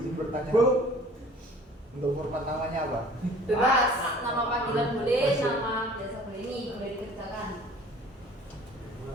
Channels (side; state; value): both; normal; correlation 0.49